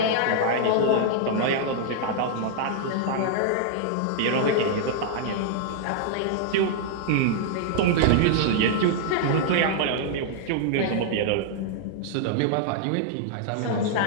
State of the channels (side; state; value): both; different; correlation -0.01